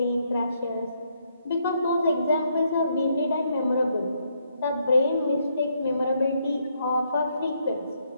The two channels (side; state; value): both; inverted; correlation -0.75